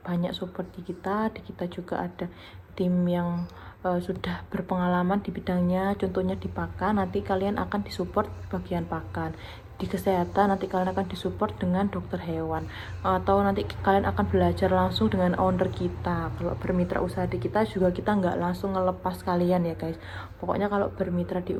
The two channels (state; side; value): identical; both; correlation 1.00